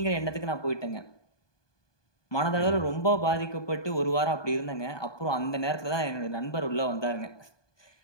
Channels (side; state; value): right; late; 1.2 ms